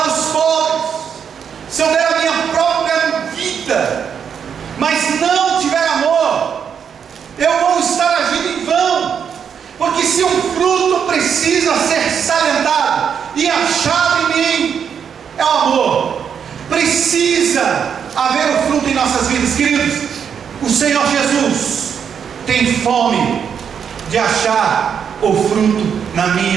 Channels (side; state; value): left; quieter; 7.5 dB